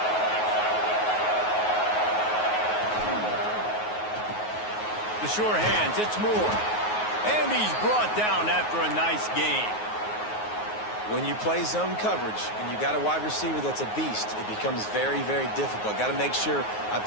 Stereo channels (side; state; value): right; late; 9.4 ms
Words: The sure hands, it's Moore. And he's brought down after a nice gain. When you play zone coverage and you got a wide receiver that's a beast, it becomes very, very difficult. Got to make sure I